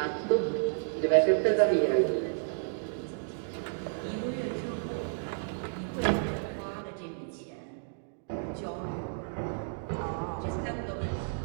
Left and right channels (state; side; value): silent; left; digital silence